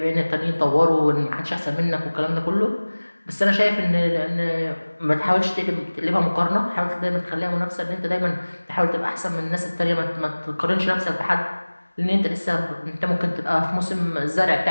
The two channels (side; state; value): both; inverted; correlation -1.00